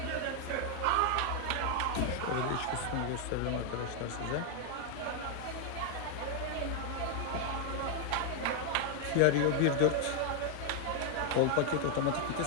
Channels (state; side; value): different; both; correlation 0.00